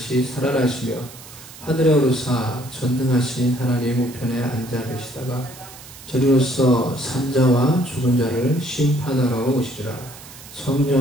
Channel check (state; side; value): noise; right; hiss, 17 dB below the sound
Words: 살아나시며 하늘에 오르사 전능하신 하나님 우편에 앉아 계시다가 저리로서 산자와 죽은 자를 심판하러 오시리라.